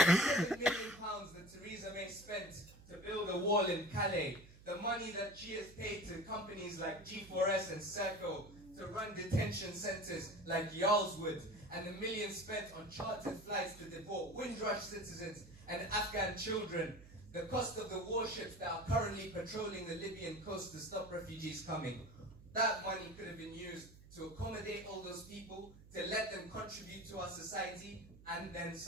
£7 million that Theresa May spent to build a wall in Calais, the money that she has paid to companies like G4S and Serco to run detention centres like Yarlswood, and the millions spent on chartered flights to deport Windrush citizens and Afghan children, the cost of the warships that are currently patrolling the Libyan coast to stop refugees coming. That money could have been used to accommodate all those people, to let them contribute to our society, and then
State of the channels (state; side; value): noise; right; hum, 20 dB below the sound